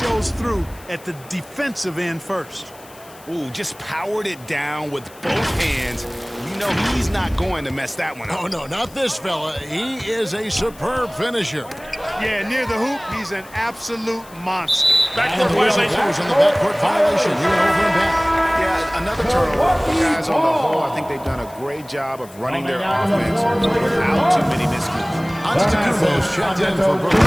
through at the defensive end first. Ooh, just powered it down with both hands. You know he's not going to mess that one up. Oh, no, not this fella. He is a superb finisher. Yeah, near the hoop, he's an absolute monster. Backcourt violation. On the backcourt violation. He went over and back. Yeah, another turnover. Guys, on the whole, I think they've done a great job of running their offense without too many miscues. Antetokounmpo's checked in for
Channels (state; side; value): noise; left; hiss, 23 dB below the sound